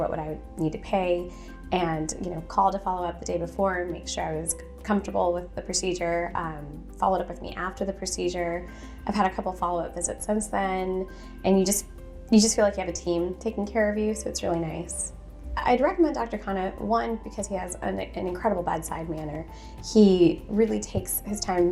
would I need to pay, and called to follow up the day before and make sure I was comfortable with the procedure. Followed up with me after the procedure. I've had a couple follow-up visits since then, and you just feel like you have a team taking care of you, so it's really nice. I'd recommend Dr. Khanna, one, because he has an incredible bedside manner. He really takes his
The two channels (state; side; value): identical; both; correlation 1.00